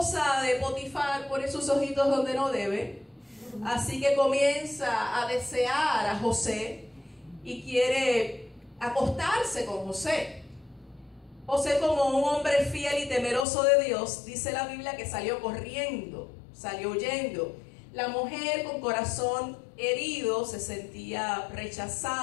de Potifar pone sus ojitos donde no debe. Así que comienza a desear a José y quiere acostarse con José. José, como un hombre fiel y temeroso de Dios, dice la Biblia que salió corriendo, salió huyendo. La mujer, con corazón herido, se sentía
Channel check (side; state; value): right; drops out; at 13.5 s